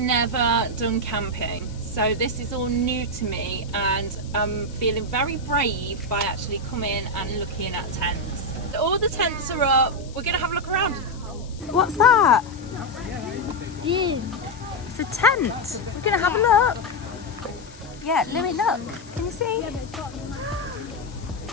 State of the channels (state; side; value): noise; left; hiss, 22 dB below the sound